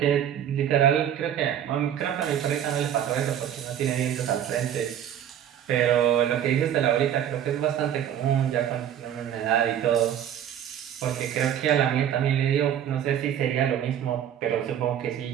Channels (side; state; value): left; quieter; 9.9 dB